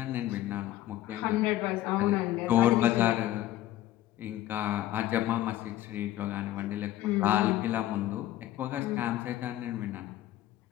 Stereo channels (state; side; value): quieter; right; 14.2 dB